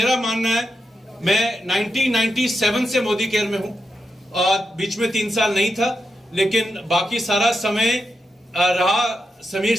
मानना है। मैं 1997 से मोदी केयर में हूं, और बीच में 3 साल नहीं था, लेकिन बाकी सारा समय रहा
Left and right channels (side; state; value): both; normal; correlation 0.87